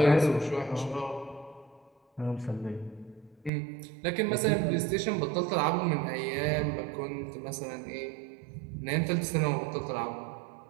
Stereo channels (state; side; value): drops out; left; at 3.5 s